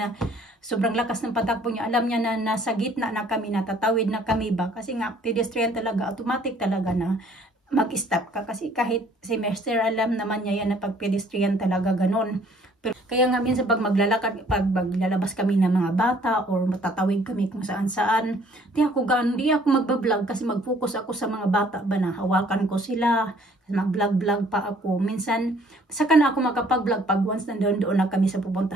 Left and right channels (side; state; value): both; normal; correlation 0.59